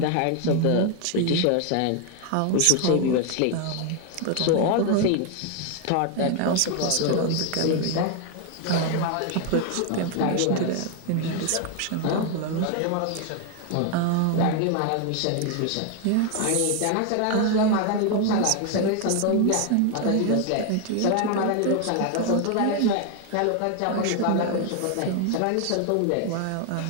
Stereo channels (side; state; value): both; different; correlation 0.01